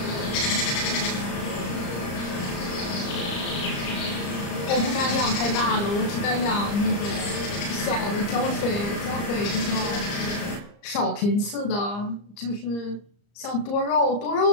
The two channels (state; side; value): late; right; 34 ms